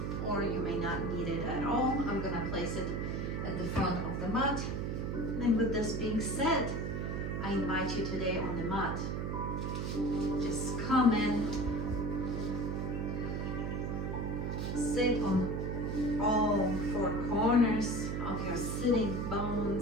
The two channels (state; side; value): noise; right; hum, 1 dB below the sound